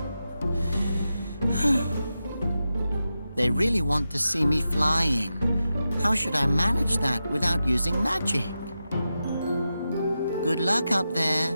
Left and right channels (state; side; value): inverted; both; correlation -0.90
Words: They really want to see me flying. How should I manage that without using magic? Good luck up there.